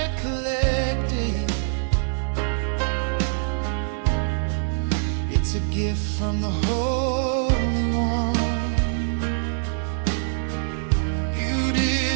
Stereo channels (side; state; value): left; silent; 56 dB below the other